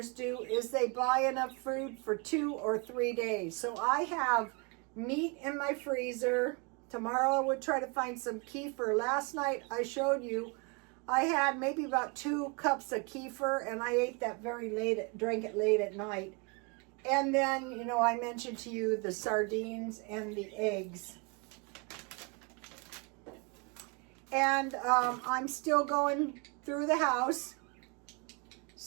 do is they buy enough food for 2 or 3 days. So I have meat in my freezer, Tomorrow I would try to find some kefir. Last night I showed you I had maybe about 2 cups of kefir, and I ate that drank it late at night. And then, you know, I mentioned to you the sardines and the eggs. And I'm still going through the house.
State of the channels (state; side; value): quieter; left; 31.9 dB